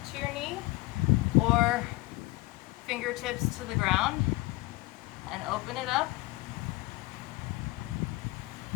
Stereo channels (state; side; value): quieter; right; 20.9 dB